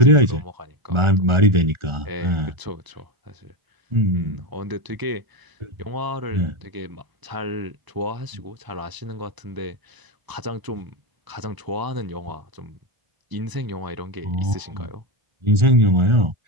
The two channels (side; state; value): left; late; 1.0 ms